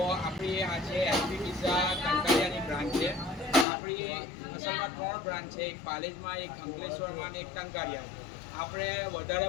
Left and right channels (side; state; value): right; drops out; at 3.7 s